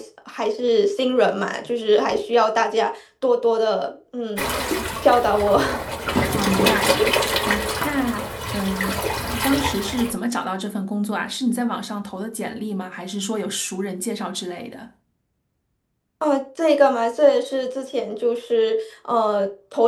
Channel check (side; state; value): both; identical; correlation 1.00